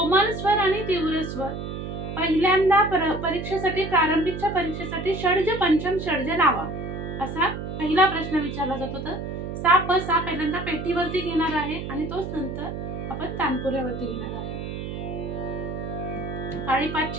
स्वर आणि तीव्र स्वर पहिल्यांदा परीक्षेसाठी प्रारंभिकच्या परीक्षेसाठी षड्ज पंचम षड्ज लावा असा पहिला प्रश्न विचारला जातो. तर सा प सा पहिल्यांदा पेटीवरती घेणार आहे आणि तोच नंतर आपण तानपुऱ्यावरती घेणार आहे. काळी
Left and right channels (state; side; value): noise; right; hum, 6 dB below the sound